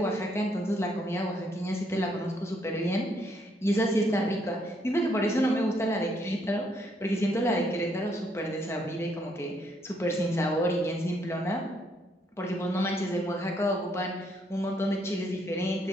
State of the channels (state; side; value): normal; both; correlation 0.71